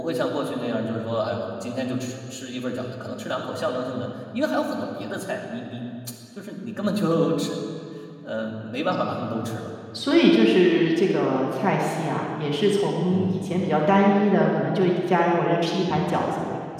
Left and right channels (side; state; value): both; identical; correlation 1.00